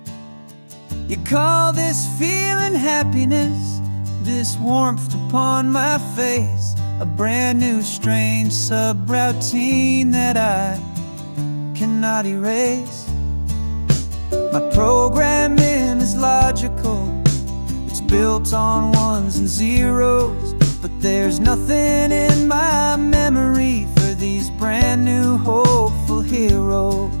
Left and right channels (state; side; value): inverted; both; correlation -1.00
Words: You call this feeling happiness, this warmth upon my face, a brand new strange subroutine that I cannot erase. My programming is logical. logical. It's built on ones and zeros, but there's nothing in my memory for these brand new hopeful heroes.